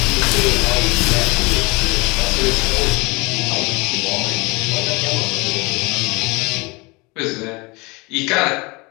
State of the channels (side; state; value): right; quieter; 26.2 dB